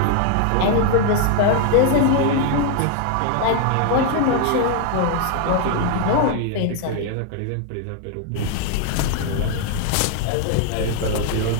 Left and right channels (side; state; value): both; different; correlation 0.00